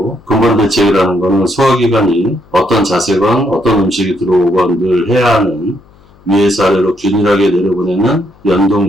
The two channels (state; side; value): noise; left; hum, 29 dB below the sound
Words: 근본 대책이라는 거는 소화기관이 어떤 자세건 어떤 음식이 들어오건 늘 해야 하는 위에서 아래로 균일하게 내려보내는